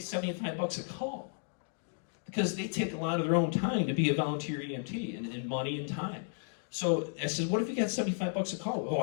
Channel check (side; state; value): right; silent; 55 dB below the other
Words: a call, because they take a lot of their own time to be a volunteer EMT, and money and time. So I said, what if you got $75 a call? Oh,